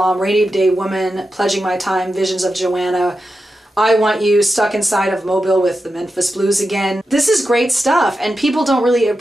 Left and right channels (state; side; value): normal; both; correlation 0.90